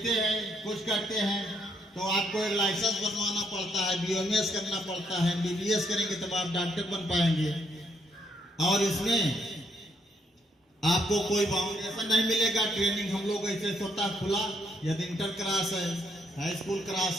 हैं, कुछ करते हैं, तो आपको एक लाइसेंस बनवाना पड़ता है, BMS करना पड़ता है, MBBS करेंगे तब आप डॉक्टर बन पाएंगे। और इसमें आपको कोई फाउंडेशन नहीं मिलेगा, ट्रेनिंग हम लोग ऐसे स्वतः खुला, यदि इंटर क्लास है, हाई स्कूल क्लास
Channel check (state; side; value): normal; both; correlation 0.73